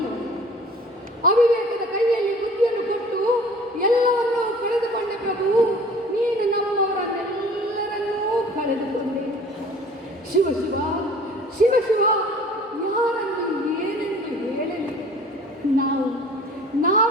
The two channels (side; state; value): both; normal; correlation 0.48